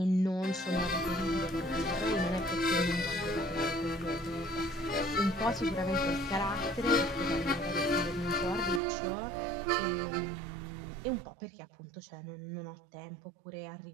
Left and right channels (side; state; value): left; drops out; at 8.8 s